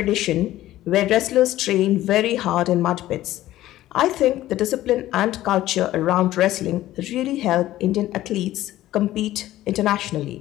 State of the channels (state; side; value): quieter; right; 14.7 dB